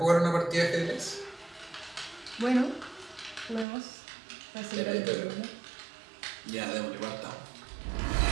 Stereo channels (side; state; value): left; drops out; at 3.7 s